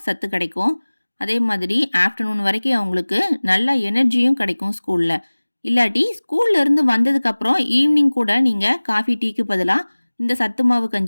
சத்து கிடைக்கும். அதே மாதிரி ஆஃப்டர்நூன் வரைக்கும் அவங்களுக்கு நல்ல எனர்ஜியும் கிடைக்கும் ஸ்கூலில். இல்லாட்டி ஸ்கூல்லேருந்து வந்ததுக்கப்புறம் ஈவினிங் கூட நீங்கள் காஃபி டீக்கு பதிலாக இந்த சத்து மாவு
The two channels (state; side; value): inverted; both; correlation -1.00